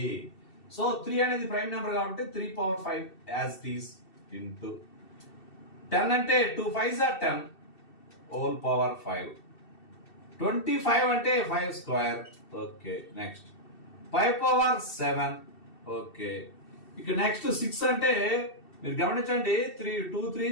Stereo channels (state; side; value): late; right; 2.7 ms